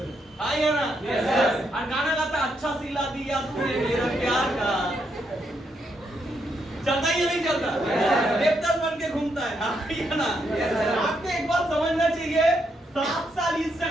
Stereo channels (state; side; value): normal; both; correlation 0.78